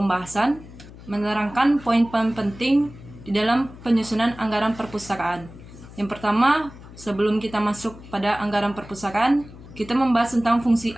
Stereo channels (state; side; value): noise; left; hum, 18 dB below the sound